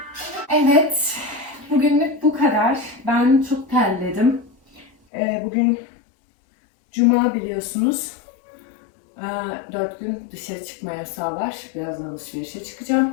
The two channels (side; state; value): right; drops out; at 4.9 s